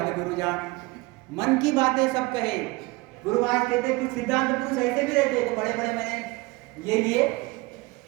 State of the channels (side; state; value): left; quieter; 22.9 dB